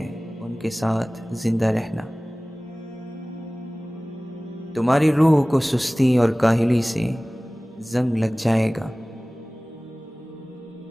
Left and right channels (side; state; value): both; normal; correlation 0.98